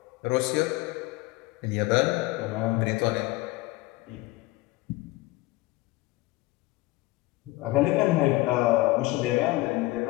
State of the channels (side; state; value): right; quieter; 20.2 dB